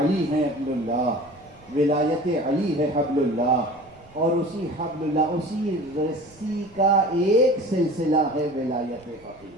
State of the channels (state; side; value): noise; right; rumble, 27 dB below the sound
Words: ہے حبل اللہ، ولایت علی ہے حبل اللہ، اور اسی حبل اللہ، اسی رسی کا ایک سلسلہ ہے ولایت